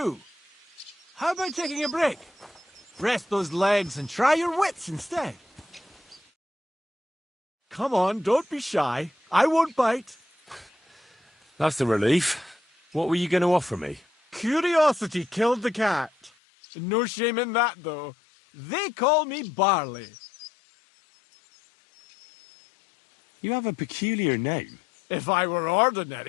How about taking a break? Rest those legs and try your wits instead. Come on, don't be shy. I won't bite. That's a relief. What were you going to offer me? Curiosity killed the cat. No shame in that, though. They call me Barley. You have a peculiar name. If I were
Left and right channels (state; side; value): drops out; right; at 16.3 s